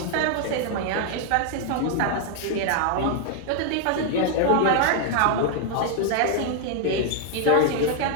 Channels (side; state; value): both; different; correlation 0.00